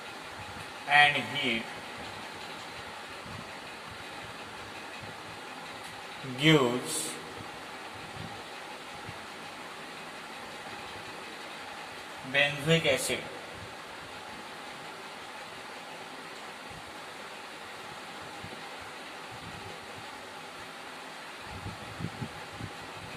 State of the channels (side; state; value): both; identical; correlation 1.00